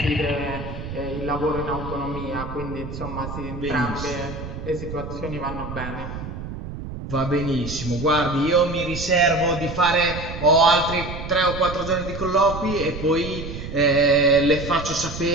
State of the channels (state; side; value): noise; right; rumble, 9 dB below the sound